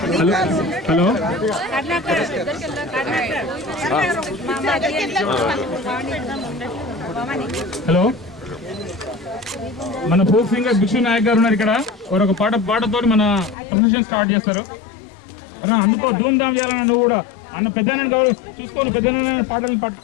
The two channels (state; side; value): drops out; right; at 13.6 s